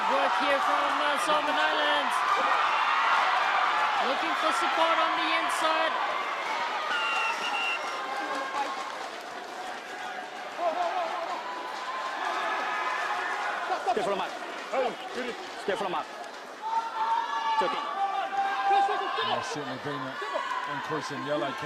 work here from Solomon Islands. Looking for support on the inside. Stay for the mark. Stay for the mark. There's certainly been an increase in yellow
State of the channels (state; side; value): identical; both; correlation 1.00